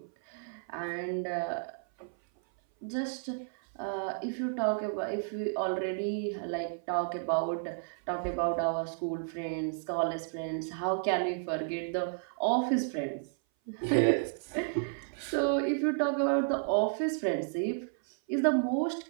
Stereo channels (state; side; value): silent; left; 56 dB below the other